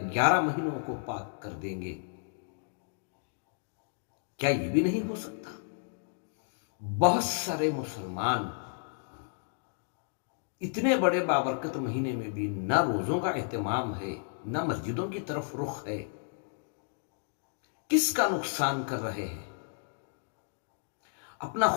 مہینوں کو پاک کر دیں گے۔ کیا یہ بھی نہیں ہو سکتا؟ بہت سارے مسلمان اتنے بڑے بابرکت مہینے میں بھی نہ روزوں کا اہتمام ہے، نہ مسجدوں کی طرف رخ ہے۔ کس کا نقصان کر رہے ہیں؟ اپنا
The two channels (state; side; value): silent; right; digital silence